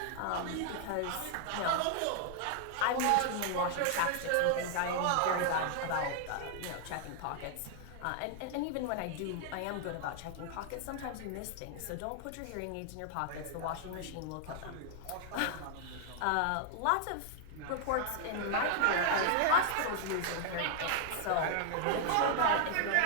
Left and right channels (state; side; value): different; both; correlation 0.00